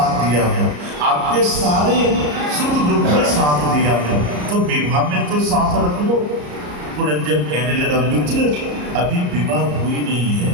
दिया हूँ, आपके सारे सुख दुख में साथ दिया हूँ, तो विवाह में तो साथ रख लो। पुरंजन कहने लगा, मित्र अभी विवाह हुई नहीं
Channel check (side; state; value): left; late; 34 ms